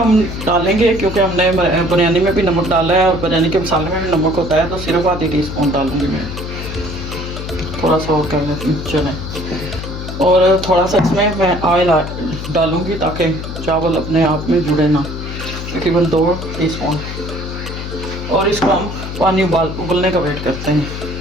डालेंगे क्योंकि हमने बिरयानी में भी नमक डाला है और बिरयानी के मसाले में भी नमक होता है, तो सिर्फ आधी टीस्पून डालूंगी मैं, थोड़ा सा और कर लेती हूँ चलें। और थोड़ा सा इसमें मैं ऑयल डालूंगी ताकि चावल अपने आप में जुड़े ना, तकरीबन 2 टीस्पून। और इसको हम पानी उबलने का वेट करते हैं।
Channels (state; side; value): noise; left; hum, 7 dB below the sound